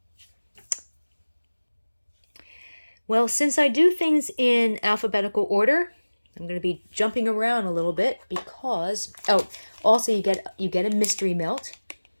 well, since I do things in alphabetical order, I'm going to be jumping around a little bit because, also you get a mystery melt,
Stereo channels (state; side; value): inverted; both; correlation -1.00